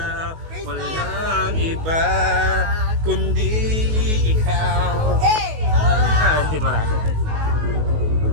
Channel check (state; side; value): late; left; 19 ms